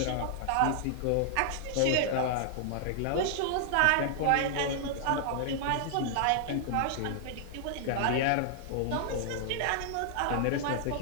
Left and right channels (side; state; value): both; different; correlation -0.01